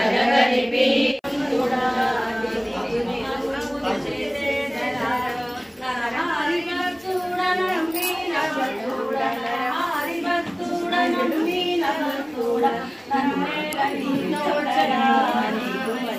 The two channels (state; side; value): identical; both; correlation 1.00